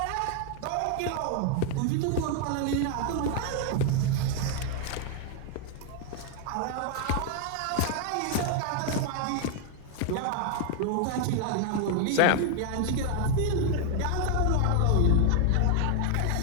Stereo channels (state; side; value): different; both; correlation 0.00